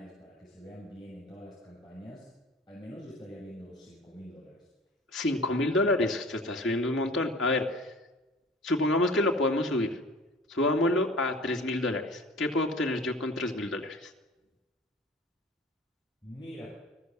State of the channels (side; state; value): both; normal; correlation 0.43